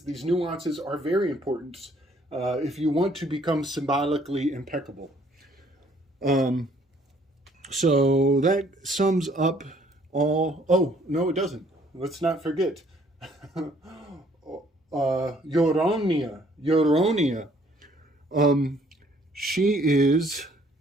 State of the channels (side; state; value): both; normal; correlation 0.62